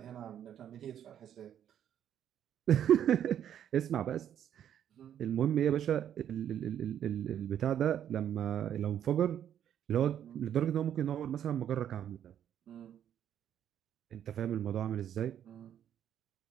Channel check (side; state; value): left; quieter; 9.9 dB